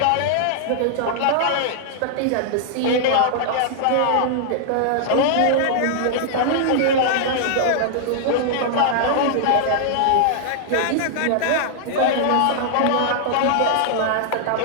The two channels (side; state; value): both; different; correlation -0.01